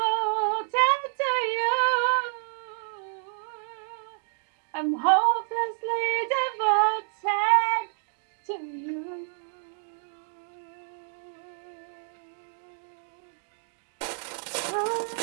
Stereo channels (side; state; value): left; silent; digital silence